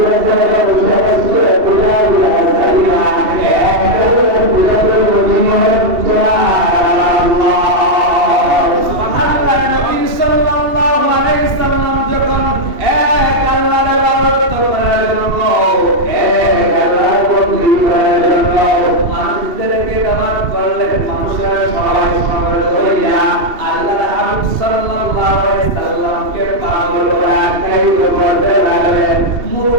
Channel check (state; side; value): late; left; 2.7 ms